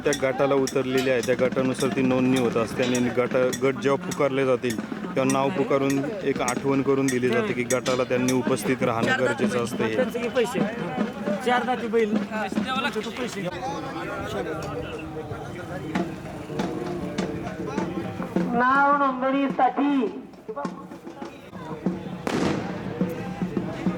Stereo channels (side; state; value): both; identical; correlation 1.00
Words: गटाला उतरलेल्या आहे त्या गटानुसार ती नोंदणी होत असते आणि गट जेव्हा पुकारले जातील तेव्हा नाव पुकारून एक आठवण करून दिली जाते की गटाला त्यांनी उपस्थित राहणं गरजेचं असतं. हे पैसे 4 दाती बैल पैसे. नाव नोंदणीसाठी